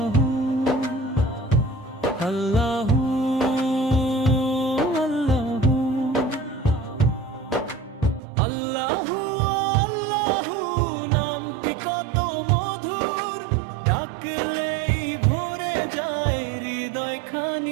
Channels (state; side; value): drops out; left; at 8.2 s